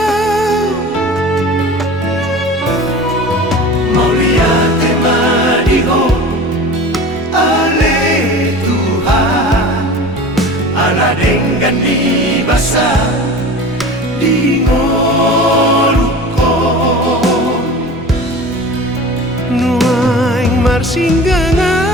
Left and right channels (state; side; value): normal; both; correlation 0.37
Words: dengan di basah di ngolukon nuaing